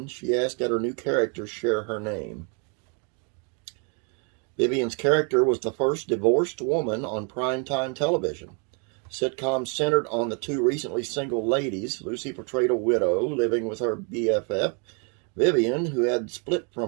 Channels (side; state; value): left; quieter; 37.6 dB